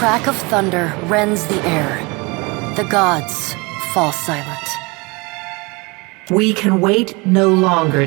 of thunder rends the air. The gods fall silent. We can wait no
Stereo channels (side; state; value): left; quieter; 26.9 dB